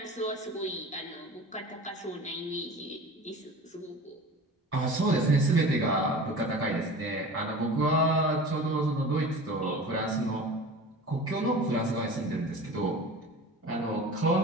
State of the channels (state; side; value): normal; both; correlation 0.37